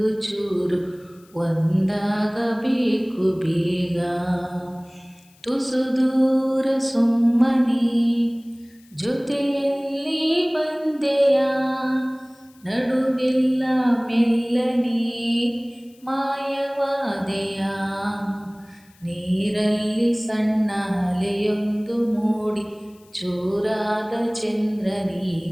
ಚೂರು ಒಂದಾಗಬೇಕು ಬೇಗ. ತುಸು ದೂರ ಸುಮ್ಮನೆ ಜೊತೆಯಲ್ಲಿ ಬಂದೆಯ, ನಡುವೆಲ್ಲ ಮೆಲ್ಲನೆ ಮಾಯವಾದೆಯ. ನೀರಲ್ಲಿ ಸಣ್ಣ ಅಲೆಯೊಂದು ಮೂಡಿ ಚೂರಾದ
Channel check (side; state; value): left; noise; hiss, 30 dB below the sound